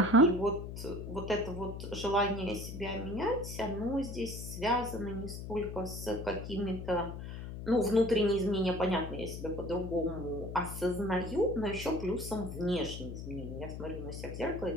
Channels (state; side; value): noise; left; hum, 8 dB below the sound